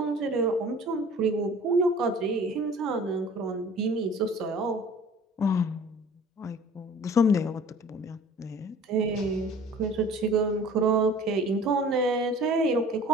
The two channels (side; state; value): both; normal; correlation 0.46